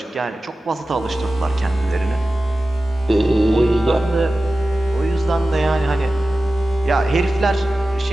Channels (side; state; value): both; normal; correlation 0.95